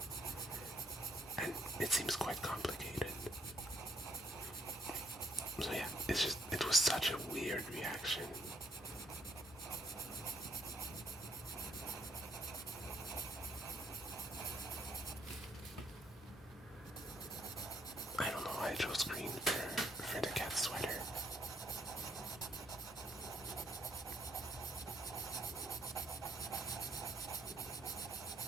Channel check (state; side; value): normal; both; correlation 0.68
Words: and it seems quite complicated. So yeah, it was such a weird reaction. I don't know why I chose green for the cat sweater.